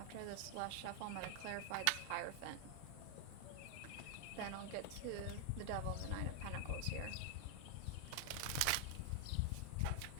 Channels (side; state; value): both; different; correlation 0.00